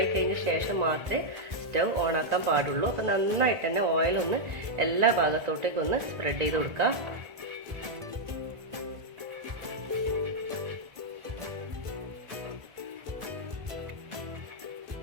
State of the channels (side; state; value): left; late; 1.5 ms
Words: കഴിഞ്ഞ ശേഷം മാത്രമേ സ്റ്റൗ ഓണാക്കാൻ പാടുള്ളൂ. അപ്പോൾ നന്നായിട്ട് തന്നെ ഓയിലൊന്ന് എല്ലാ ഭാഗത്തോട്ടേക്കും ഒന്ന് സ്പ്രെഡ് ചെയ്ത് കൊടുക്കുക.